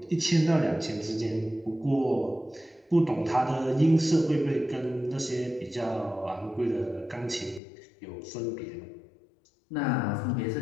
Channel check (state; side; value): drops out; right; at 7.6 s